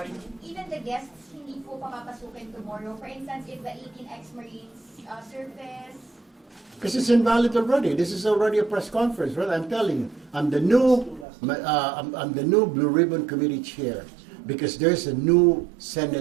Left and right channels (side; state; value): left; drops out; at 11.2 s